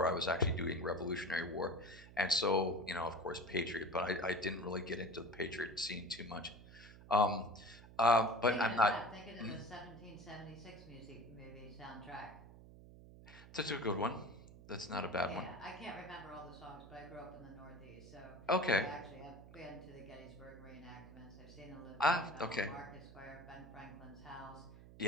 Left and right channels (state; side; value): noise; right; hum, 18 dB below the sound